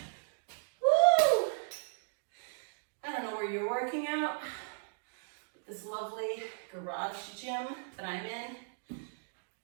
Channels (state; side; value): silent; left; digital silence